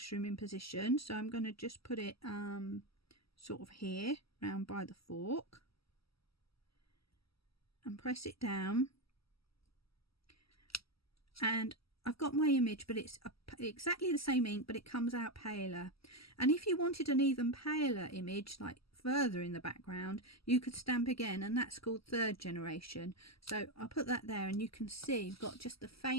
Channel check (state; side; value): late; right; 0.76 ms